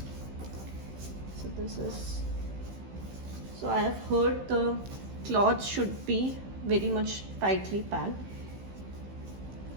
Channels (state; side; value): late; left; 15 ms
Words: So this is, so I have heard the cloth should be very much tightly packed,